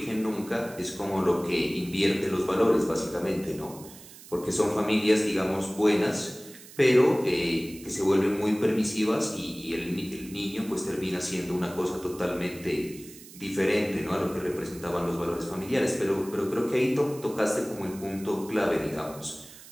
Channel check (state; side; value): noise; right; hiss, 18 dB below the sound